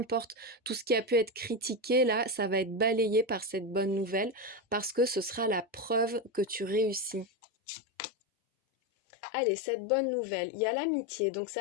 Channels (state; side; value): drops out; right; at 7.2 s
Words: tout ce qui a pu être critiqué, là, ça va être balayé par cette bonne nouvelle parce que ce sera la preuve que tu réussis. Allez, cette bonne nouvelle, il y a l'amitié. Donc